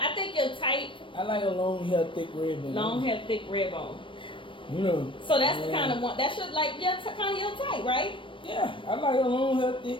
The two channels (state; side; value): late; right; 0.25 ms